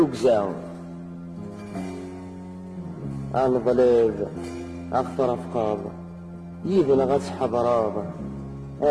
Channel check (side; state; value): both; identical; correlation 1.00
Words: الظليب أخطر أفقاض يذن غس حضراض